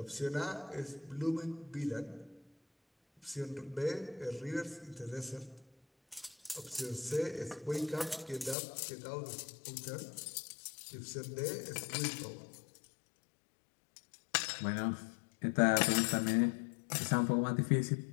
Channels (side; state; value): right; drops out; at 8.6 s